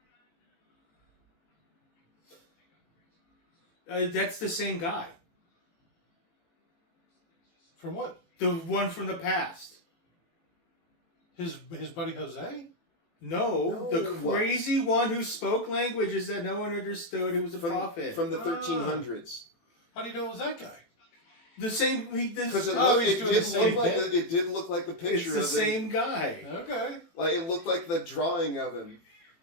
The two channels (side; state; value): right; late; 18 ms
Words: That's the same guy. From what? The one from the past. His buddy Jose? No, No, the crazy one who spoke languages that no one understood, who was a prophet. From the 1300s. How do you know it was that guy? The same. Because it, Oh, looked- he's it doing did the same look like bit? it did look like the It's picture the of him. same guy. Okay. Like, it looked like the drawing of him.